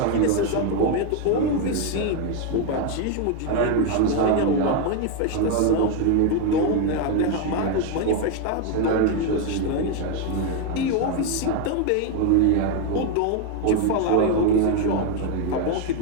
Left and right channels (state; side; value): different; both; correlation 0.02